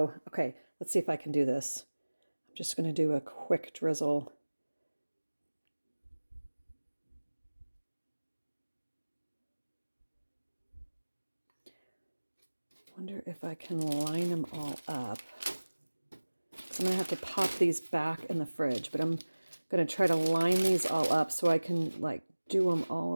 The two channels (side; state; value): both; inverted; correlation -1.00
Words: okay, let's see if I can do this. I'm just going to do a quick drizzle. Wonder if I can line them all up. So I'm going to have to pop these back in the fridge, but I'm going to try to line these all up so I can like do them all